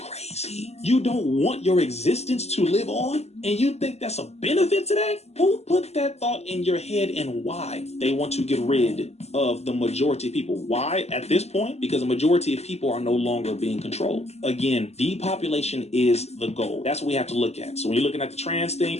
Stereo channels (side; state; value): right; late; 0.31 ms